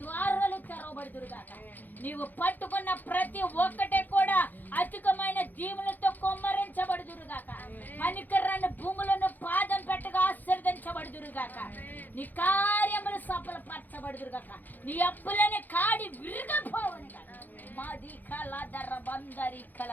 ద్వారాలు తెరవబడుదురుగాక. నీవు పట్టుకున్న ప్రతి ఒక్కటే కూడా అధికమైన దీవులతో కొమ్మరించబడుదురుగాక. మణికర్రాన్ని భూములను పాదం పెట్టగా ఆశీర్వదించబడుదురుగాక. నీ కార్యములు సఫలపరచబడుదురుగాక. నీ అప్పులని కాడి విరిగపోవని గాక. మాది కలదర బందరి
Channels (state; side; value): late; right; 0.085 ms